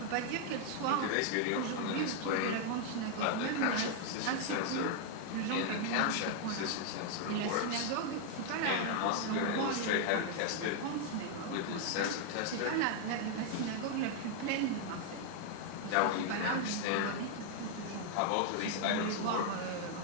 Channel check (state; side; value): different; both; correlation 0.00